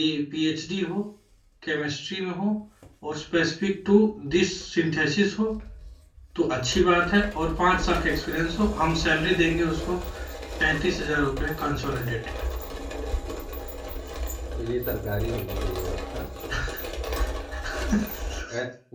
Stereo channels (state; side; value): identical; both; correlation 1.00